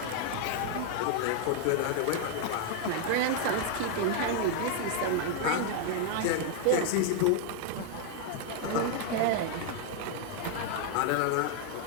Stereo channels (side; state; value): both; different; correlation 0.00